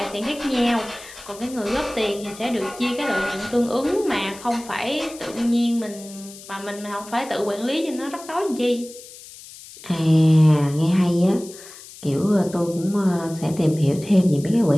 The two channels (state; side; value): noise; left; hiss, 17 dB below the sound